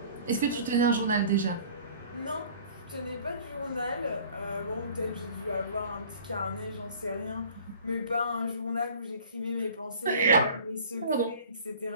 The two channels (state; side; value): inverted; both; correlation -0.48